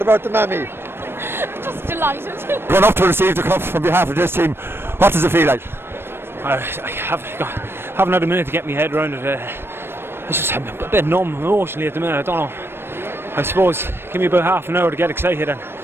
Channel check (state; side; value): late; left; 0.11 ms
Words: about the mammy? Just delighted. Going up to receive the cup from behalf of this team, what does it feel like? I haven't had a minute to get my head around it. I'm a bit numb emotionally at the minute. I don't know. I suppose give me about half an hour to get excited, and